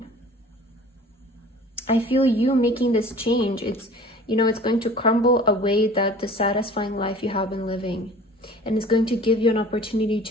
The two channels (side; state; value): both; normal; correlation 0.45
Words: I feel you making this change. It's, you know, it's going to crumble away that dissatisfying life you have been living, and it's going to give you an opportunity